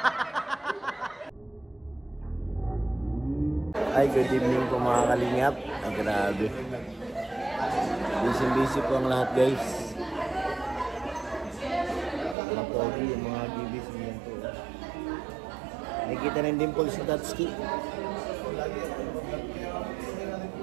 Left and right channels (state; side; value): drops out; left; at 12.4 s